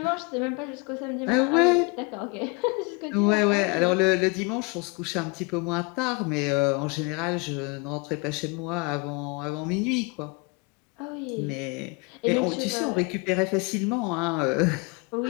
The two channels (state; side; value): quieter; right; 29.2 dB